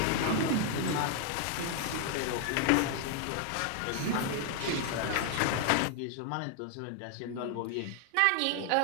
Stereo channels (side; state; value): both; different; correlation 0.00